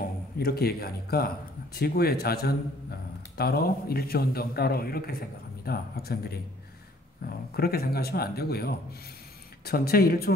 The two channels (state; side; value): normal; both; correlation 0.58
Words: 이렇게 얘기하니까 지구의 자전 따로 일주운동 따로 이렇게 생각합니다. 학생들이 그렇게 생각하시면 안 되고요. 전체